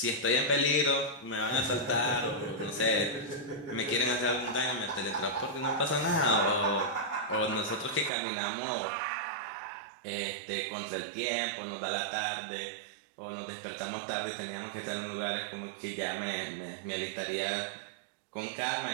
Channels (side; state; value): left; drops out; at 8.1 s